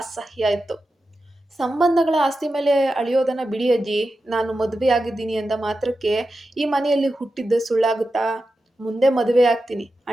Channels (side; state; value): both; normal; correlation 0.91